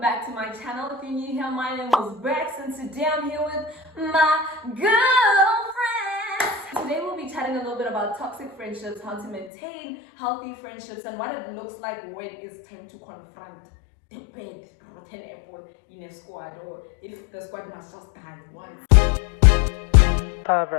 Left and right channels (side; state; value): right; drops out; at 9.5 s